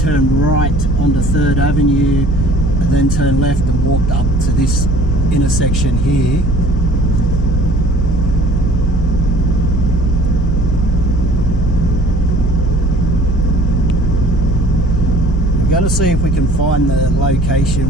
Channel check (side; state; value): both; normal; correlation 0.51